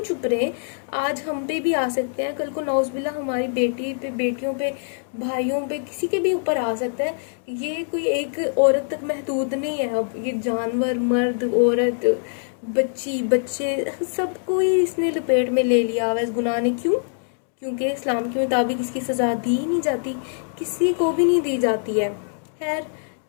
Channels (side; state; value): right; silent; digital silence